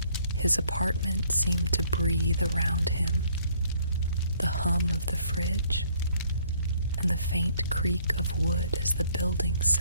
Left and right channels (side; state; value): both; inverted; correlation -0.63